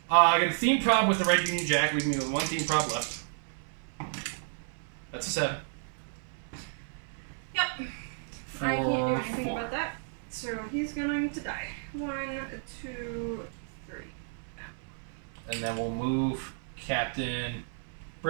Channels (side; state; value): left; silent; 57 dB below the other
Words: I got a theme prop with the red Union Jack, leaving me with 1 theme prop left. That's a 7. Yep. I can't do 4, anything 4. about that. So he's going to die. 1, 2, 3. And then we'll move Captain